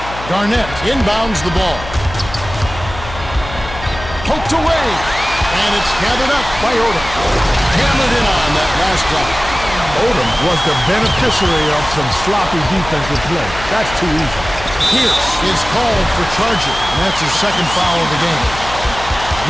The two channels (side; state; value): left; noise; hum, 12 dB below the sound